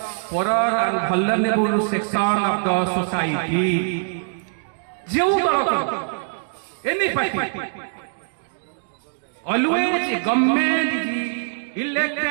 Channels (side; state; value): left; silent; digital silence